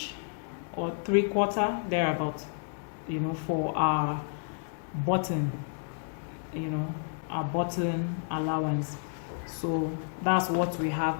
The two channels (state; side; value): silent; right; 57 dB below the other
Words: or 3/4 thereabout, you know, for our button, you know, our button allowance. So that's what we have